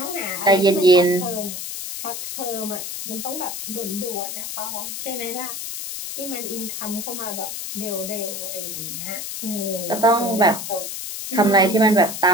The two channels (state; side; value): noise; left; hiss, 6 dB below the sound